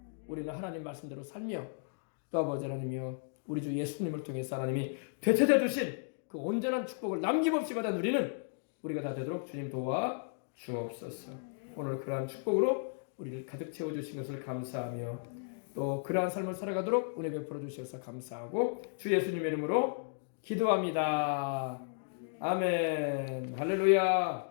우리는 하나님 말씀대로 살며 또 아버지 하나님이여 우리 주 예수님을 통해서 하나님이 되찾아 주신 그 온전한 축복을 남김없이 받아 누리는 우리가 다 되도록 주님 도와 주옵소서. 오늘 그러한 축복으로 우리를 가득 채워주신 것을 감사하며 또 그러한 삶을 살아가도록 은혜 베풀어 주셔서 감사하고 주 예수님의 이름으로 기도합니다. 아멘.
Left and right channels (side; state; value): right; silent; digital silence